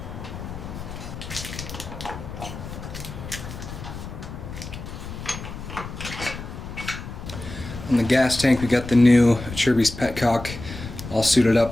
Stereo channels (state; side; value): noise; left; rumble, 10 dB below the sound